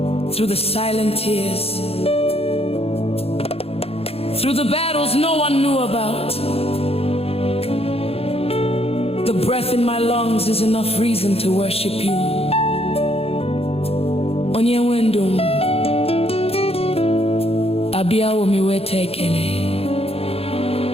through the silent tears, through the battles no one knew about, the breath in my lungs is enough reason to worship you. Onye wendum, abia omi wetekele,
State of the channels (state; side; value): late; right; 0.29 ms